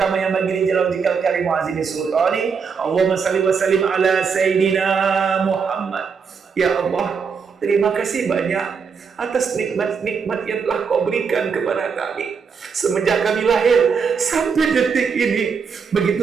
yanbaghi li jalali wajhikal karim wa azimi sultani. Allahumma salli wa sallim ala sayyidina Muhammad. Ya Allah, terima kasih banyak atas nikmat-nikmat yang telah Kau berikan kepada kami semenjak kami lahir sampai detik ini.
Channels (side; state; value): left; quieter; 5.9 dB